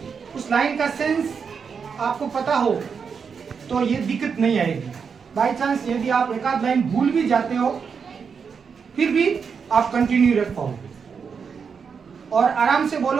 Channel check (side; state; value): left; quieter; 6.1 dB